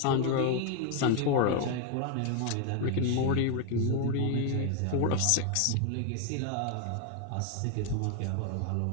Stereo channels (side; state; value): both; different; correlation 0.01